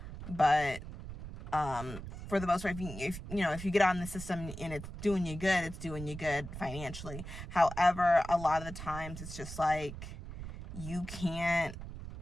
but for the most part, if you get on the system and it's doing you good financially. However, a lot of the times it's just like, you can't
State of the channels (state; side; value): noise; right; rumble, 10 dB below the sound